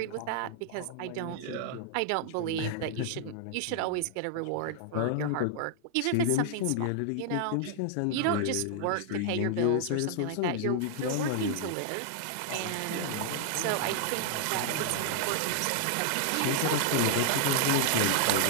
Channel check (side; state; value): both; different; correlation 0.00